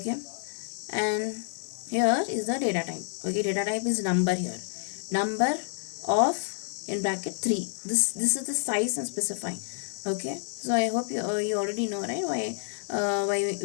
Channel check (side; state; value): right; silent; digital silence